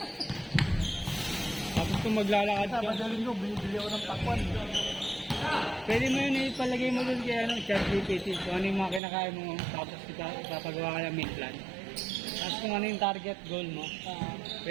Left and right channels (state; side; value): drops out; left; at 9.0 s